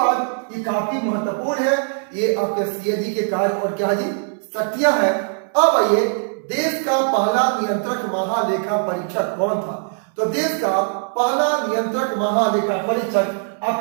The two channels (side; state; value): left; silent; 65 dB below the other